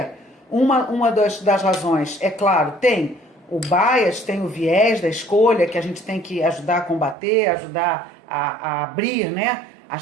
Uma das razões, é claro, tem o bias, tem o viés da escolha, que a gente tem que ajudar a combater, ajudar a abrir, né,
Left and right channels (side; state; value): left; drops out; at 7.2 s